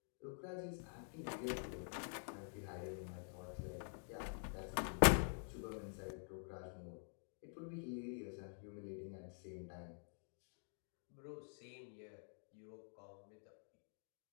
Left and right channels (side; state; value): right; silent; digital silence